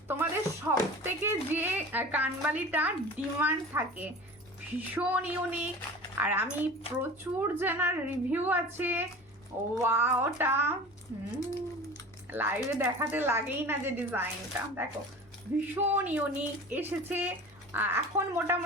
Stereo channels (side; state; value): both; normal; correlation 0.38